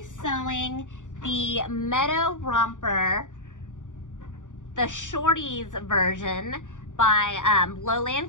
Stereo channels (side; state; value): right; late; 0.86 ms